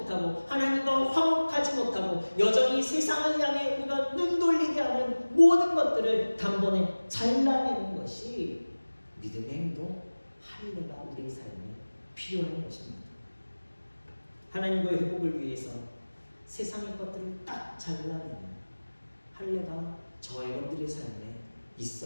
하나님과 화목하지 못하고 여전히 세상을 향해 우리가 눈 돌리게 하는 모든 것들을 단번에 잘라내는 것이 믿음의 행동, 할례가 우리의 삶에 필요한 것입니다. 하나님과의 회복을 위해서 세상의 것들을 딱 잘라내는 할례가 저와 여러분들의 삶에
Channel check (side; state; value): both; inverted; correlation -1.00